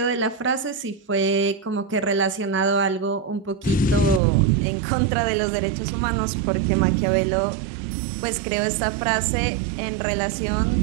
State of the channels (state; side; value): drops out; left; at 4.2 s